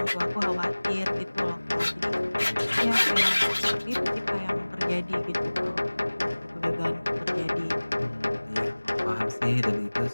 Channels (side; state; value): both; inverted; correlation -1.00